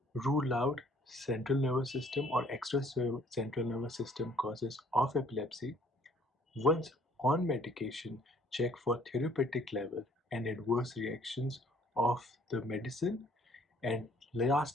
Rule out central nervous system or extra central nervous system causes of epilepsy. Once on medication, check for therapeutic level and adverse reactions of the medicine. And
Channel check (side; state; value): both; normal; correlation 0.60